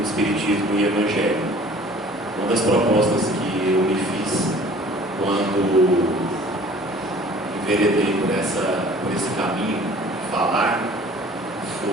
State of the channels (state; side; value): normal; both; correlation 0.50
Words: Espiritismo e Evangelho. Uma das propostas que eu me fiz quando enveredei por esse caminho de falar